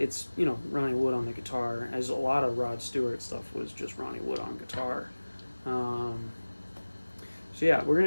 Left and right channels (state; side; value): inverted; both; correlation -1.00